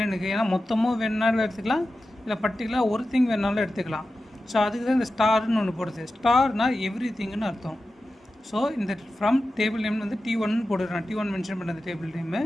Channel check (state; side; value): normal; both; correlation 0.93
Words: ஏன்னா மொத்தமாக வேணுனாலும் எடுத்துக்கலாம், இல்லை பர்டிகுலராக ஒரு திங் வேணுனாலும் எடுத்துக்கலாம். ஸோ அதுக்கு தான் இந்த ஸ்டார்னு ஒன்று போடுது. ஸ்டார்னால் எவ்ரி திங்குன்னு அர்த்தம். ஸோ இந்த ஃப்ரம் டேபிள் நேம் வந்து T1 போடுறேன். T1 மென்ஷன் பண்ண அந்த டேபிள் நேமு.